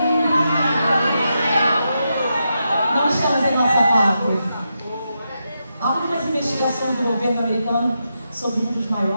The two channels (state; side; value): inverted; both; correlation -0.85